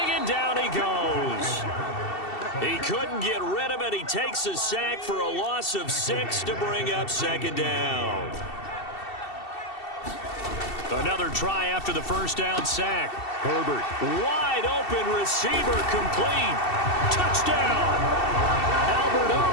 and down he goes. He couldn't get rid of it. He takes a sack for a loss of 6 to bring up 2nd down. Another try after the first down sack. Herbert, wide open receiver, complete. Touchdown. Albert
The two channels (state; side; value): late; right; 2.7 ms